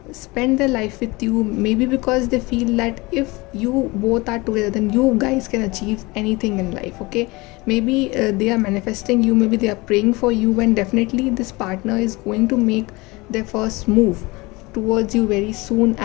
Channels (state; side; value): quieter; right; 23.5 dB